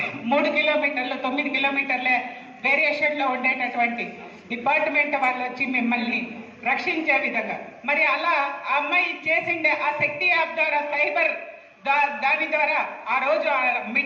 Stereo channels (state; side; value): identical; both; correlation 1.00